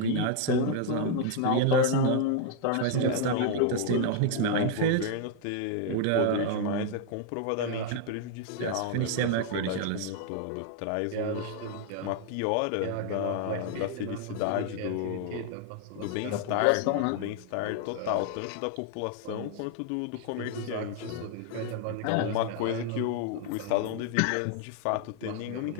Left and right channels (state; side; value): different; both; correlation 0.00